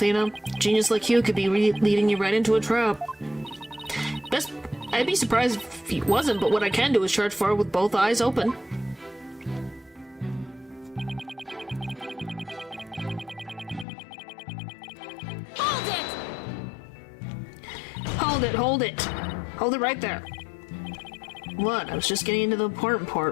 Genius like you could be leading you right into a trap. I'd be surprised if he wasn't, but what I can do is charge forward with both eyes open. Hold it! Hold it, hold it! Hold it right there. What? I was just getting into the important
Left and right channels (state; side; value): drops out; right; at 13.9 s